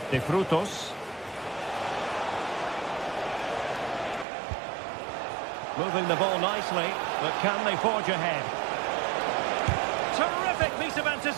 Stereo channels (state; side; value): drops out; left; at 4.2 s